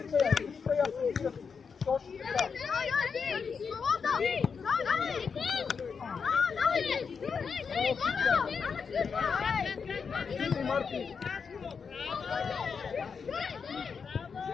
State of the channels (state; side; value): quieter; right; 5.8 dB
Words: Точно така. Излитай, Марти.